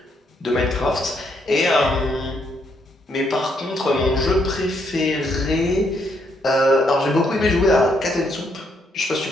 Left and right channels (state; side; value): normal; both; correlation 0.74